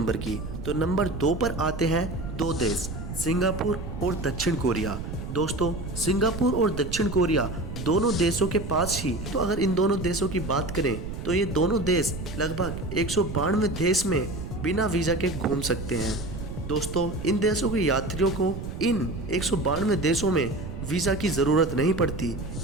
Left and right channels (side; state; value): right; noise; rumble, 7 dB below the sound